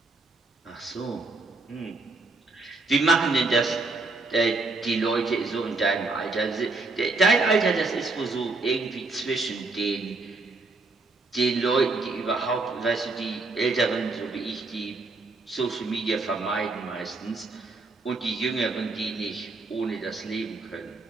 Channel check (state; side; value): quieter; left; 3.6 dB